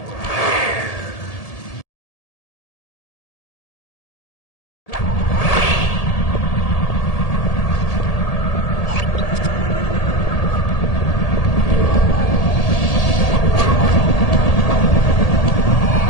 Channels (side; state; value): right; late; 1.8 ms